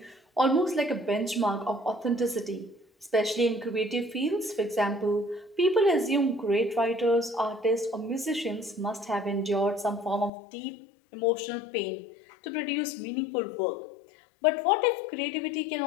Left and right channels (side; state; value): right; drops out; at 10.3 s